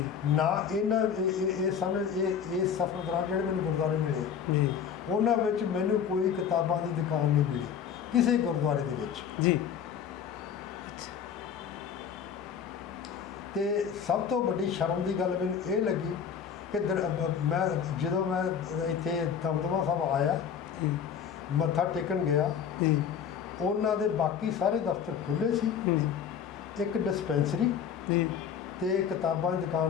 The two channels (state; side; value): quieter; right; 7.7 dB